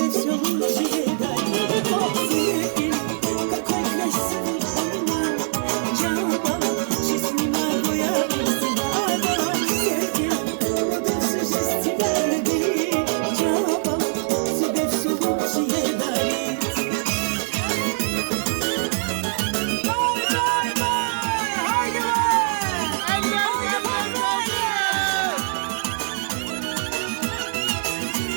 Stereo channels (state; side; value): silent; left; digital silence